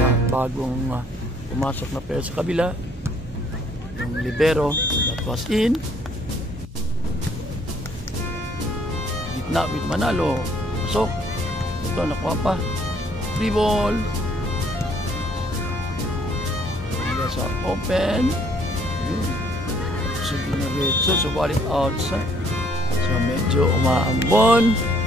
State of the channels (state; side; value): normal; both; correlation 0.63